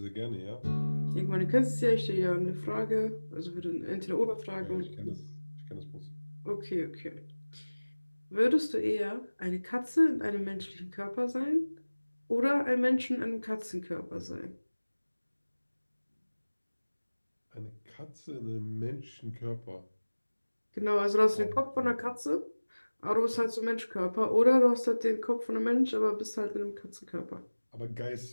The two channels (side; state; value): both; inverted; correlation -1.00